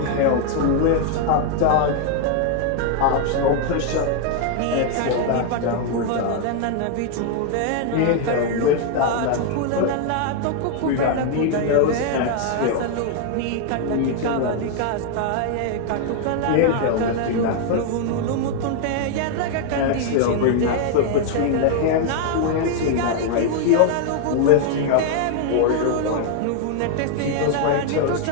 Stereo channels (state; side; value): different; both; correlation 0.00